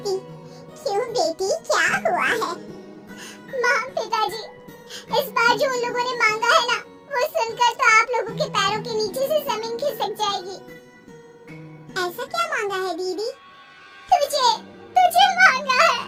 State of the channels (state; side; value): identical; both; correlation 1.00